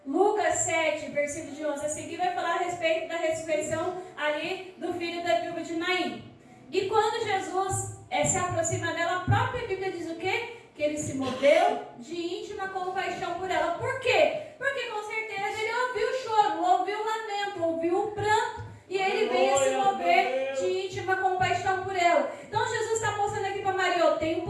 Lucas 7, versículo de 11 a seguir, vai falar a respeito da ressurreição ali do filho da viúva de Naim. E quando Jesus se aproxima dela, a própria Bíblia diz o quê? Que ele se moveu de íntima compaixão por ela. Por quê? Porque com certeza ele ouviu o choro, ouviu o lamento, ouviu o pranto, e ele veio se mover de íntima compaixão por ela. Então Jesus está mostrando aqui para Maria: eu tenho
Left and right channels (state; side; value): identical; both; correlation 1.00